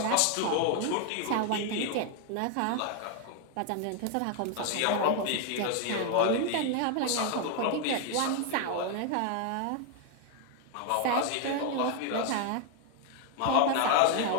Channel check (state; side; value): different; both; correlation 0.01